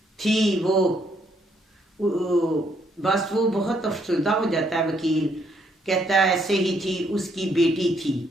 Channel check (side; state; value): both; normal; correlation 0.71